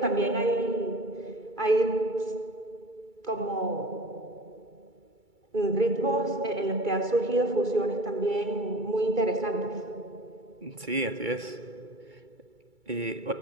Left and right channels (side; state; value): left; late; 2.3 ms